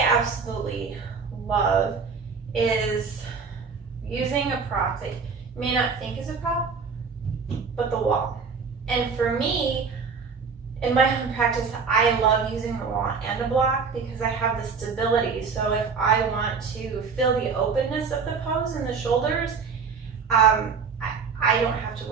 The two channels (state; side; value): quieter; left; 5.4 dB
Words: absolutely love, is using a prop that you may not think is a prop, but the wall. And for me, in my own practice, I love using the wall and a block because I have the stability. So if I want to feel the openness of the pose in the shoulders, I don't have to